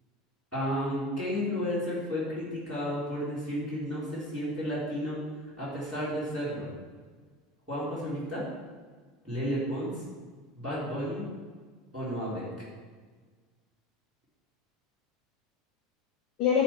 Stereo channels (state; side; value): normal; both; correlation 0.33